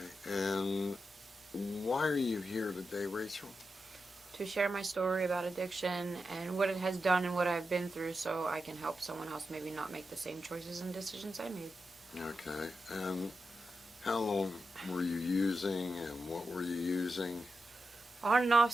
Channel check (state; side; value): normal; both; correlation 0.88